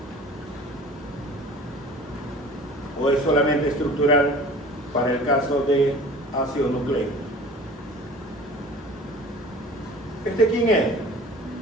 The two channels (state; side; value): normal; both; correlation 0.44